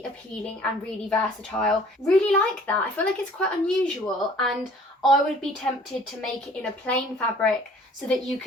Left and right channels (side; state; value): both; normal; correlation 0.53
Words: appealing and really versatile. Really like that. I feel like it's quite unusual, and I would be tempted to make it in a plain fabric so that you